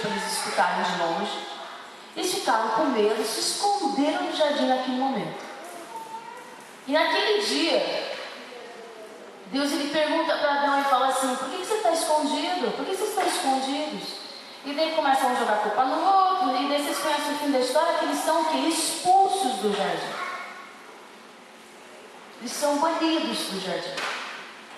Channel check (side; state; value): both; identical; correlation 1.00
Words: eles escutarem de longe. Eles ficaram com medo, se esconderam no jardim naquele momento. E naquele dia, Deus ele pergunta para Adão e fala assim: por que você está escondido? Por que vocês estão escondidos? E daí começam a jogar culpa no outro, e daí vocês conhecem o fim da história, que eles são o quê? Expulsos do jardim. Eles são banidos do jardim.